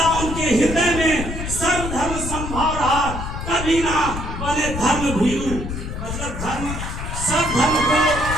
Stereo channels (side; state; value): left; noise; rumble, 6 dB below the sound